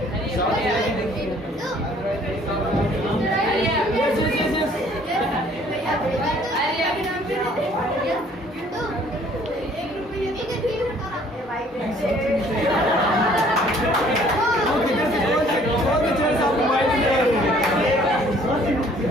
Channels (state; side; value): normal; both; correlation 0.58